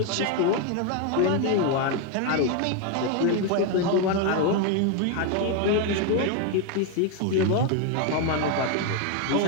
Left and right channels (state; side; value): different; both; correlation 0.01